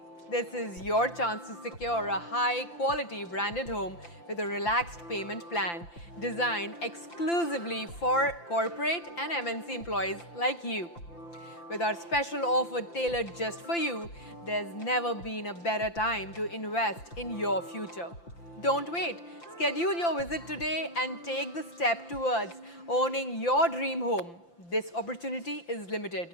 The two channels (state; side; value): late; right; 5.9 ms